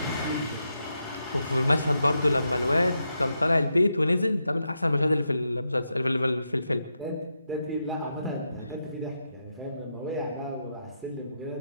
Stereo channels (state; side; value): inverted; both; correlation -0.84